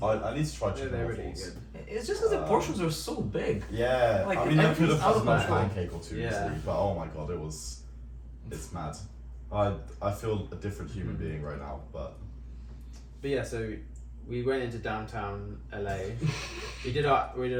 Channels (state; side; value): identical; both; correlation 1.00